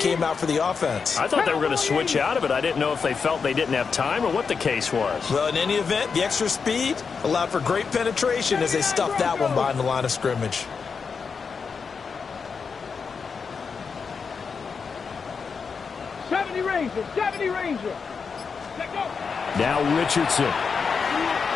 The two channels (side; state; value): right; quieter; 5.5 dB